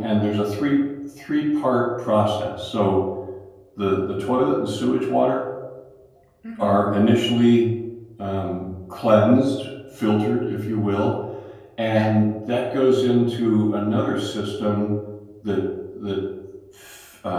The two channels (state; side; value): identical; both; correlation 1.00